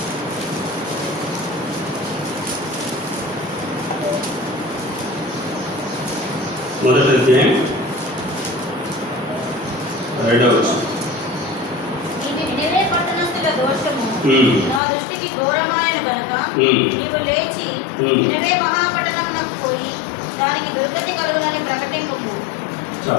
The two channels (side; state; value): right; drops out; at 14.8 s